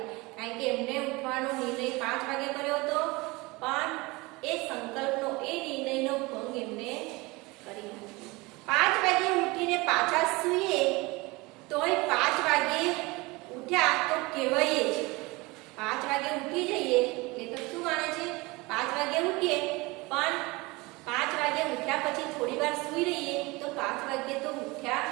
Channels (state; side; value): quieter; left; 23.7 dB